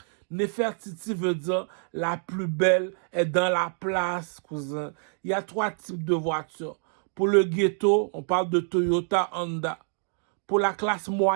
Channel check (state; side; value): silent; left; 60 dB below the other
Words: Nefertiti veut dire la plus belle est dans la place, cousin. Il y a 3 types de voitures. Pour le ghetto, on parle de Toyota, Honda. Pour la classe